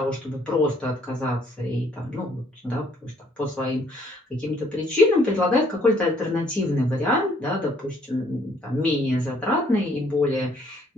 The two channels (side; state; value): both; normal; correlation 0.64